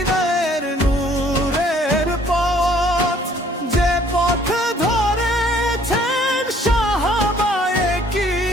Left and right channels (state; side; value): normal; both; correlation 0.59